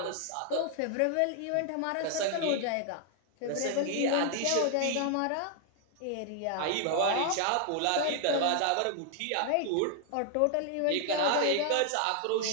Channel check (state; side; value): different; both; correlation 0.00